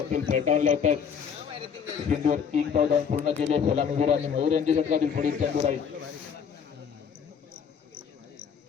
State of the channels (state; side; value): quieter; right; 7.0 dB